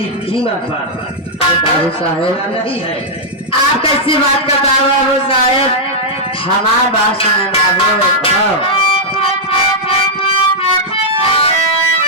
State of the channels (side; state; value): both; normal; correlation -0.06